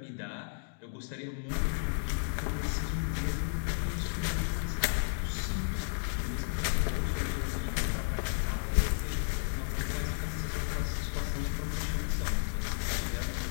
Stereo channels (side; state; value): right; silent; digital silence